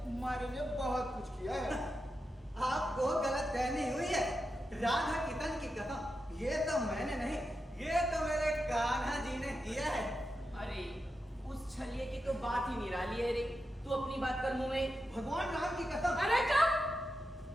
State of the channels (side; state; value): both; normal; correlation 0.89